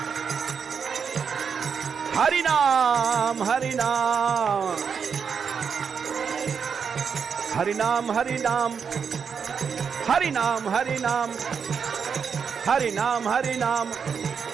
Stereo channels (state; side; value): quieter; left; 6.5 dB